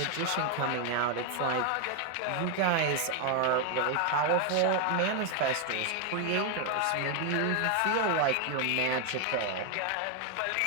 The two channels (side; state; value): both; different; correlation 0.01